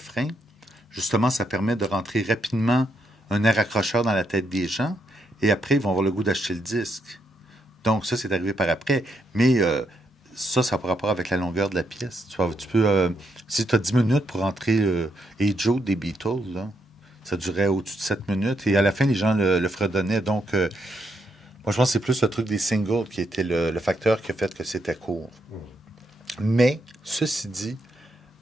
Justement, ça permet de rentrer rapidement un air accrocheur dans la tête des gens, et après, ils vont avoir le goût d'acheter le disque. Donc, ça, c'est arrivé par après. Mais ça n'a pas rapport avec la longueur de la pièce. Tu peux, si tu as 10 minutes pour rentrer Hey Joe des Beatles, là, ça durait au-dessus de 7 minutes. Et à la fin, les gens le fredonnaient. Donc, moi, je pense que c'est plus le truc des singles qui était le facteur qui a fait que c'était court. Mais, ceci dit,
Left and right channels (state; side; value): normal; both; correlation 0.78